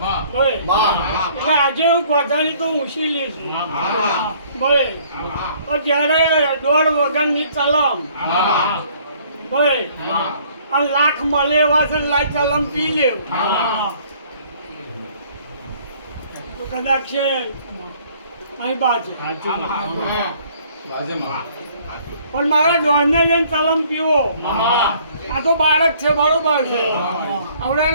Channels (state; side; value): inverted; both; correlation -0.59